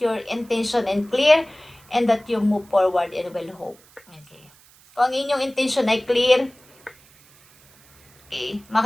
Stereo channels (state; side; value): noise; right; hiss, 28 dB below the sound